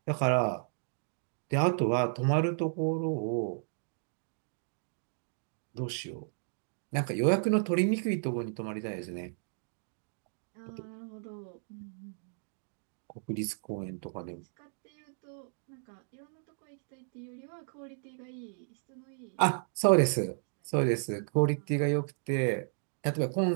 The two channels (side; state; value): left; silent; digital silence